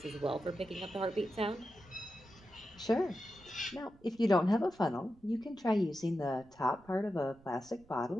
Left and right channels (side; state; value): right; noise; rumble, 26 dB below the sound